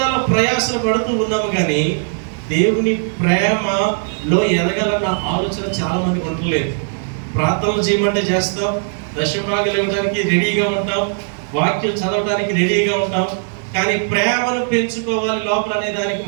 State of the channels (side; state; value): left; silent; 63 dB below the other